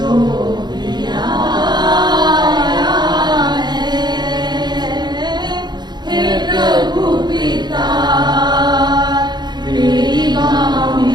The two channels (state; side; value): late; left; 0.21 ms